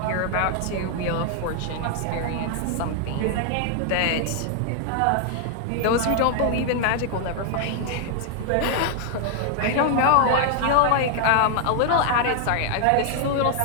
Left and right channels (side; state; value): both; different; correlation 0.00